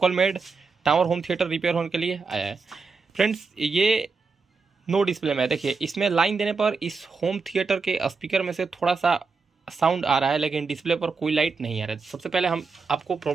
made tower home theatre repair होने के लिए आया है। फ्रेंड्स, ये नो डिस्प्ले में है। देखिए, इसमें लाइन देने पर इस होम थिएटर के स्पीकर में से थोड़ा सा साउंड आ रहा है, लेकिन डिस्प्ले पर कोई लाइट नहीं आ रहा है। सबसे पहले हम आपको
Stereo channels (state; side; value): quieter; left; 4.6 dB